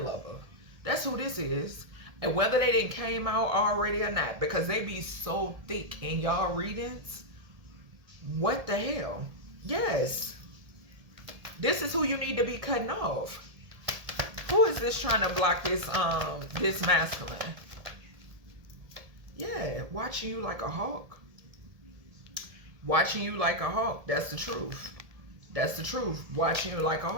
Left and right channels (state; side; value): late; left; 1.7 ms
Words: lover. That's who this is. And whether they didn't came out already or not, because they be so thick in y'all readings. What the hell? Yes. This is who you need to be cutting off. Who is this trying to block this this masculine? Yeah, watching you like a hawk. Watching you like a hawk. That's the truth. That's the truth. Watching you like a